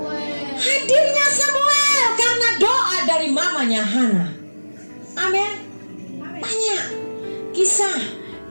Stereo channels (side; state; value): both; inverted; correlation -1.00